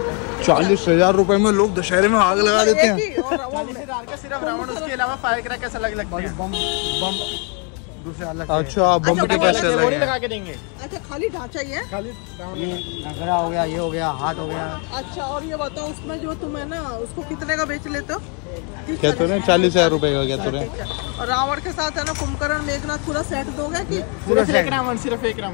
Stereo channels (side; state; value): right; quieter; 36.7 dB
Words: 40,000 रुपए में लोग दशहरे में आग लगा देते हैं। सिर्फ रावण, उसके अलावा फायर क्रैकर्स अलग लगते हैं। बम दूसरे अलग। अच्छा, बम के पैसे अलग हैं। लगा के देंगे। अच्छा खाली ढांचा ही है? खाली ये नगरा हो गया, ये हो गया, हाथ हो गया। अच्छा और ये बताओ उसमें जो तुम है ना उसको कितने का बेच लेते हो? क्या तो रहे? 40,000 रुपए का क्या तो रहे? और रावण के साथ है ना कुंभकर्ण मेघनाथ पूरा सेट दोगे कि सिर्फ एक रावण? सिर्फ एक